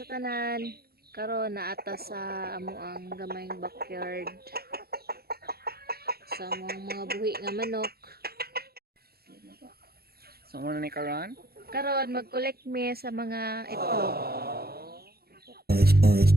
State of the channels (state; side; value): late; left; 0.45 ms